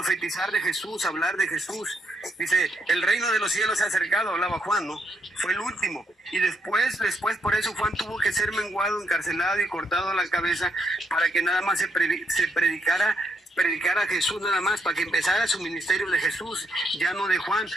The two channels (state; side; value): normal; both; correlation 0.76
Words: de Jesús, a hablar de Jesús. Dice, el reino de los cielos se ha acercado, hablaba Juan, ¿no? Fue el último. Y después por eso Juan tuvo que ser menguado, encarcelado y cortado la cabeza para que nada más se predicara a Jesús nada más, para que empezara su ministerio de Jesús, ya no de Juan,